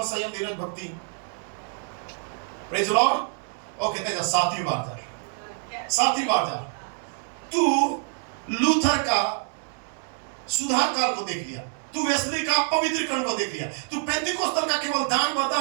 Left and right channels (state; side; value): silent; left; 56 dB below the other